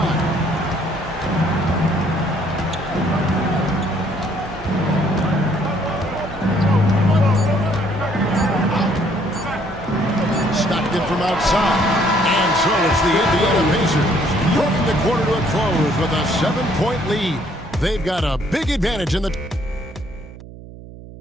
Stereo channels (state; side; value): noise; right; hum, 16 dB below the sound